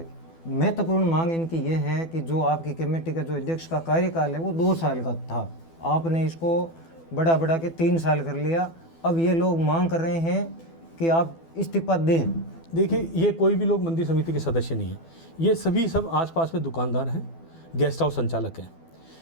महत्वपूर्ण मांग इनकी ये है कि जो आपकी कमेटी का जो अध्यक्ष का कार्यकाल है वो 2 साल का था, आपने इसको बढ़ा के 3 साल कर लिया। अब ये लोग मांग कर रहे हैं कि आप इस्तीफा दें। देखिए, ये कोई भी लोग मंदिर समिति के सदस्य नहीं है, ये सभी सब आसपास में दुकानदार हैं, गेस्ट हाउस संचालक हैं।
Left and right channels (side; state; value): right; late; 12 ms